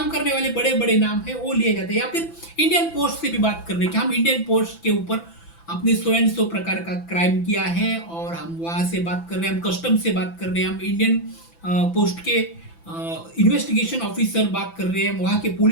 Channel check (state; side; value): late; right; 6.0 ms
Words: करने वाले बड़े बड़े नाम है वो लिए जाते हैं। या फिर इंडियन पोस्ट से भी बात कर रहे हैं कि हम इंडियन पोस्ट के ऊपर अपने सो एंड सो प्रकार का क्राइम किया है और हम वहाँ से बात कर रहे हैं, हम कस्टम से बात कर रहे हैं, हम इंडियन पोस्ट के इन्वेस्टिगेशन ऑफिसर बात कर रहे हैं, वहाँ के